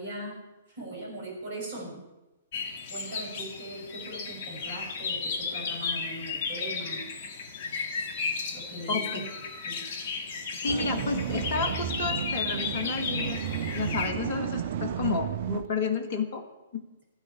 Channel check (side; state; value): both; inverted; correlation -0.43